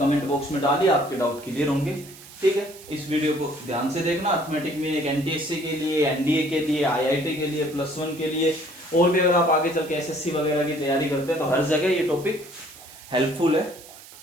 बॉक्स में डालिए, आपके डाउट क्लियर होंगे, ठीक है। इस वीडियो को ध्यान से देखना। अर्थमेटिक मीन एक एनटीएससी के लिए, एनडीए के लिए, आईआईटी के लिए, +1 के लिए, और भी अगर आप आगे चल के एसएससी वगैरह की तैयारी करते हैं तो हर जगह ये टॉपिक हेल्पफुल है।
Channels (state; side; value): noise; right; hiss, 19 dB below the sound